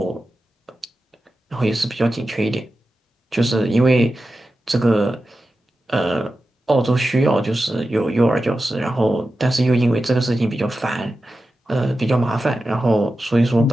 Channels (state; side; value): normal; both; correlation 0.92